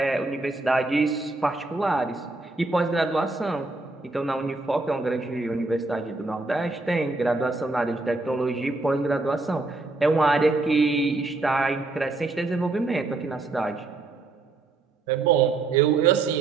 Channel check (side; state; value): left; quieter; 3.3 dB